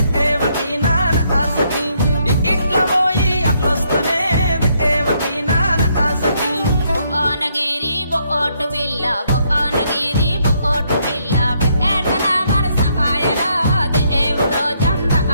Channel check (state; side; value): inverted; both; correlation -0.73